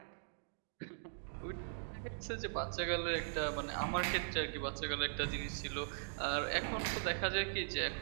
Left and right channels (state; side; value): silent; left; digital silence